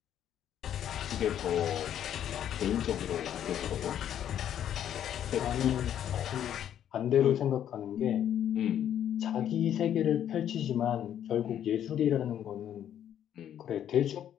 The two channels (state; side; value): quieter; right; 10.2 dB